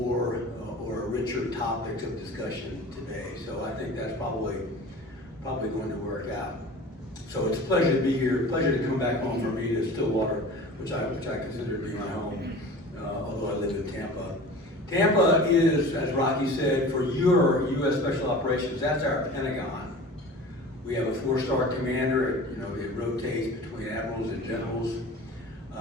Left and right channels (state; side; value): normal; both; correlation 0.39